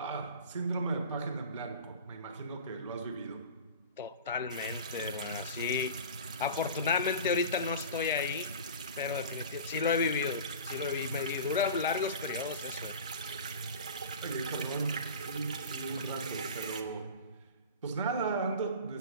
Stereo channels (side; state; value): both; inverted; correlation -0.35